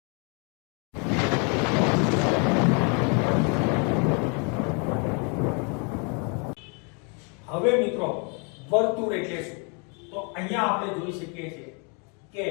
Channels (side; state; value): right; quieter; 36.0 dB